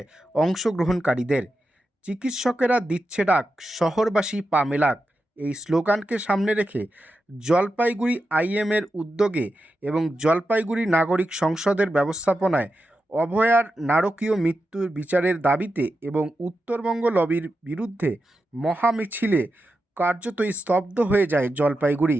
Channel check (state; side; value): normal; both; correlation 0.89